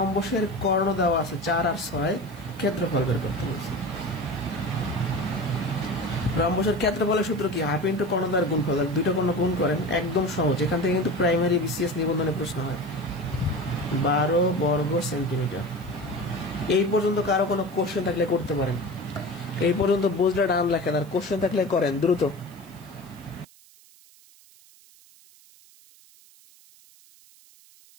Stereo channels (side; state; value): right; noise; hiss, 26 dB below the sound